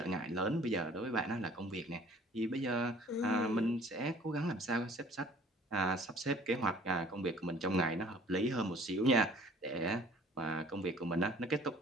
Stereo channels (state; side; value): normal; both; correlation 0.53